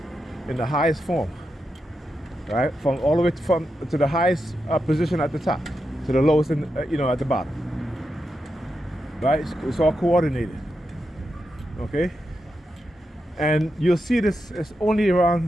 in the highest form. Right? From all the way to the highest position at the top, to the lowest at the bottom. Right? It's all coordinated. Okay? And you'll see this, it's only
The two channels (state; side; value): normal; both; correlation 0.87